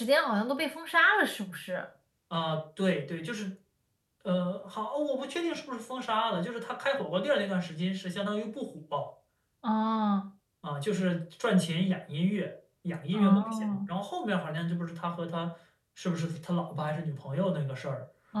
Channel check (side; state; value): both; identical; correlation 1.00